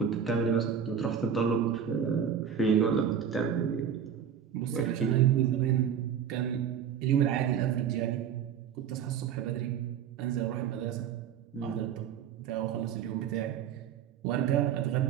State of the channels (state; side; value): quieter; left; 8.3 dB